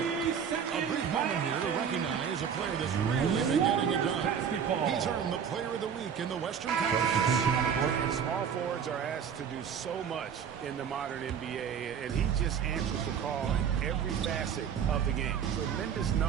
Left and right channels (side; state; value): left; quieter; 7.6 dB